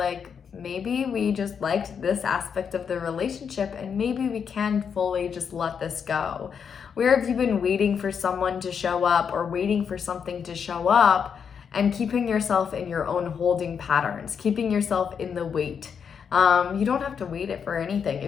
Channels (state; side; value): quieter; right; 6.9 dB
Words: maybe we just liked this aspect of the relationship and maybe we can fully just let this go. Where have you been waiting for someone to show up or waiting for something to show up and keeping yourself in your own holding patterns, keeping yourself in the wait? You don't have to wait it for anything